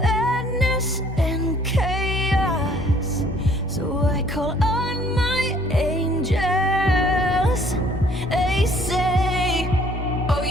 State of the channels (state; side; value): normal; both; correlation 0.59